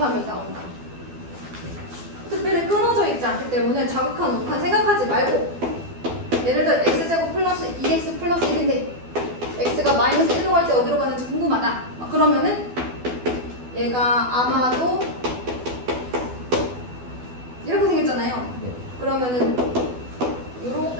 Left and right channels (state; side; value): late; left; 12 ms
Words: 나온다. 특별히 끊어져 있지 않기 때문에 자극한, 우극한 생각하지 말고, 예를 들어 x제곱 플러스 2x 플러스 1인데 x가 마이너스 1로 갈 때 어디로 가는지 궁금하다. 그러면은 얘가 아마도 이렇게 생겼잖아요. 그러면은